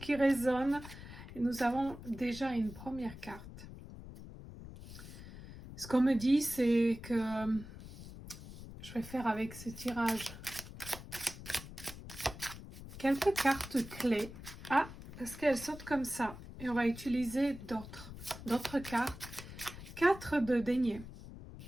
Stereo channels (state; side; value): noise; left; rumble, 13 dB below the sound